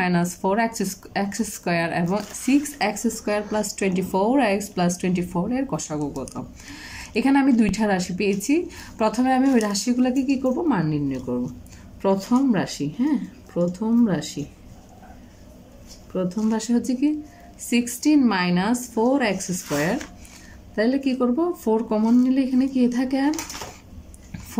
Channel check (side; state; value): both; identical; correlation 1.00